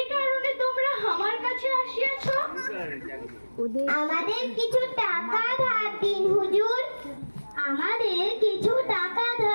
কারণে তোমরা আমার কাছে আসিয়াছ? আমাদের কিছু টাকা ধার দিন হুজুর, আমাদের কিছু টাকা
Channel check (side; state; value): both; inverted; correlation -1.00